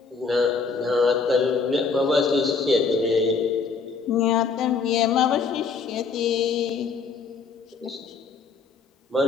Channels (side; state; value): right; quieter; 5.0 dB